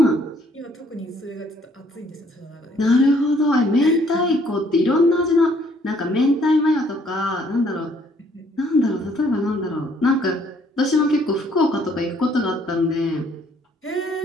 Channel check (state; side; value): normal; both; correlation 0.64